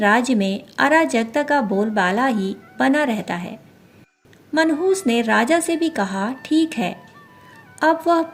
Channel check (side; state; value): both; identical; correlation 1.00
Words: में अराजकता का बोलबाला ही बना रहता है। मनहूस ने राजा से भी कहा, ठीक है। अब वह